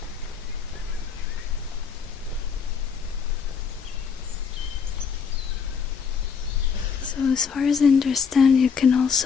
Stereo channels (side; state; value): right; quieter; 6.2 dB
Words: So as far as I understand, you can